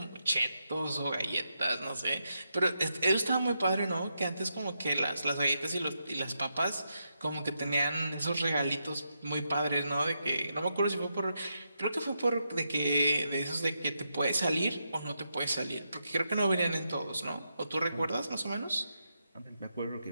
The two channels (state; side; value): inverted; both; correlation -0.84